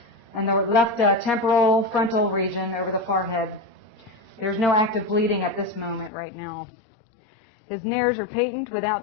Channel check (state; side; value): drops out; right; at 6.1 s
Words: and the left temporal frontal region over the forehead. There's no active bleeding at this moment right now. His nares are patent